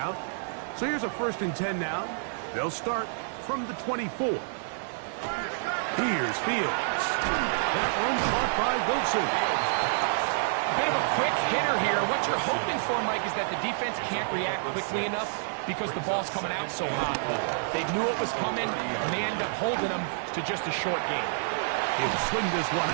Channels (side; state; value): left; silent; digital silence